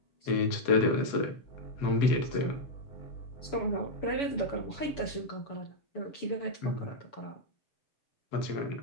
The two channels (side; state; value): right; late; 7.0 ms